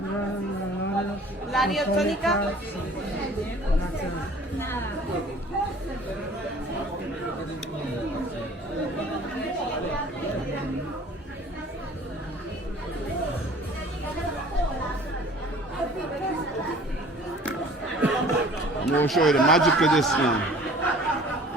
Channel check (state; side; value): normal; both; correlation 0.49